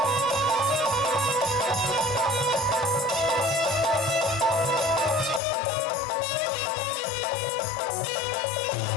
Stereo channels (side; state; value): right; drops out; at 5.4 s